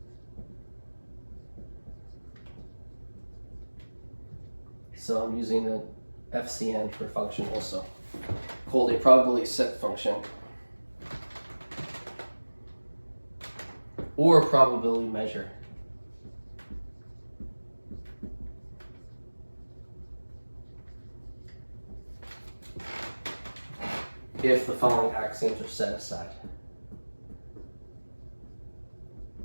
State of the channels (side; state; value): both; inverted; correlation -1.00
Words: So I'm using the FCN for function also, called a probability set function or probability measure. If the following axioms are set aside.